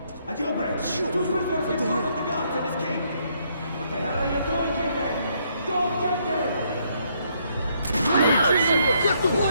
A jailbreak. Two prisoners in front of the guards and escape. What the hell are you doing here then? Go get them!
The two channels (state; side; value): inverted; both; correlation -0.72